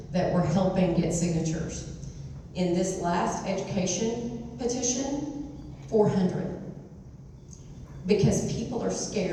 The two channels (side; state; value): both; identical; correlation 1.00